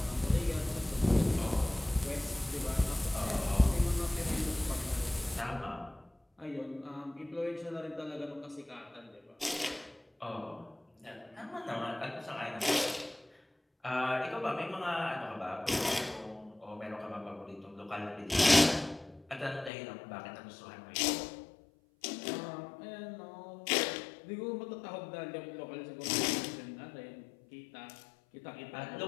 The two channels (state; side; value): drops out; right; at 19.7 s